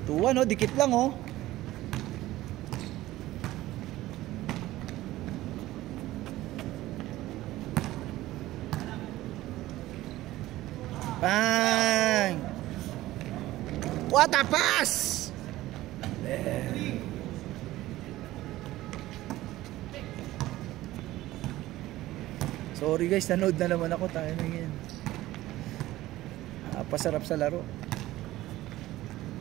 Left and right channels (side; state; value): left; quieter; 16.3 dB